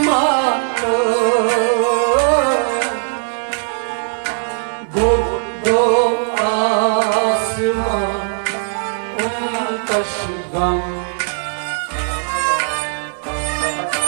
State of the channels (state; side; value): silent; left; digital silence